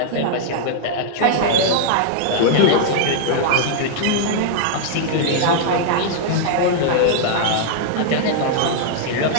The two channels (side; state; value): both; different; correlation -0.01